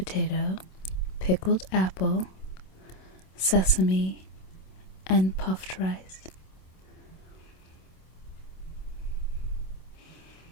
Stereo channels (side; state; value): right; late; 27 ms